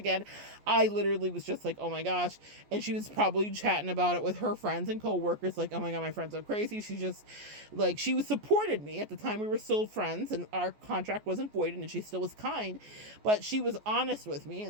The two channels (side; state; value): left; late; 14 ms